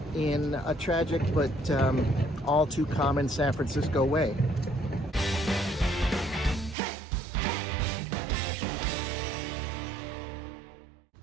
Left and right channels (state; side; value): drops out; left; at 6.8 s